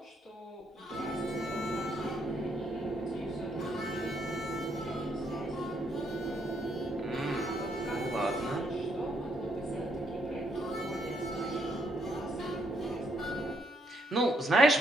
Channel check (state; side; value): normal; both; correlation 0.74